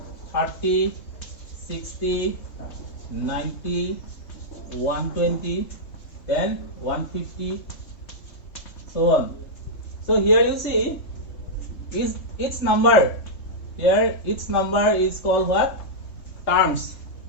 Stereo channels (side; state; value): right; late; 3.2 ms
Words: 30, 60, 90, 120, then 150, so on. So here you see is each number. Here each number is called what? Terms.